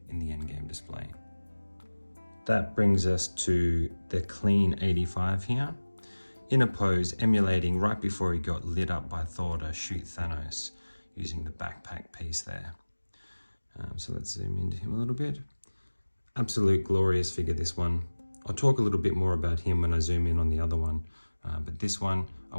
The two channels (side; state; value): both; inverted; correlation -1.00